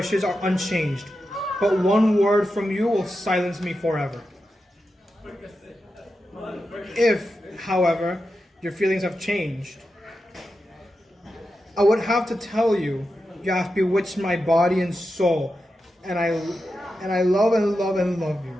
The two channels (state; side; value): normal; both; correlation 0.89